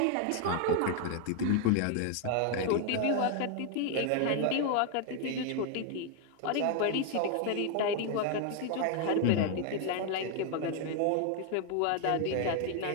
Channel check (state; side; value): different; both; correlation 0.00